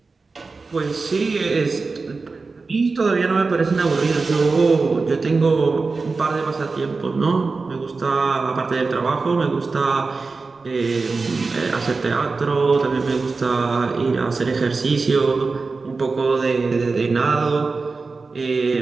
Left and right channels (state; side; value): quieter; left; 4.1 dB